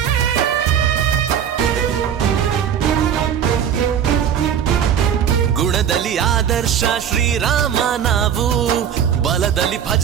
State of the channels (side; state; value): left; quieter; 8.7 dB